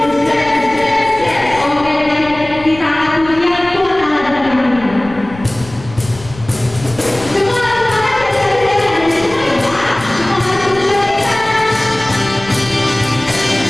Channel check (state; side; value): noise; left; rumble, 17 dB below the sound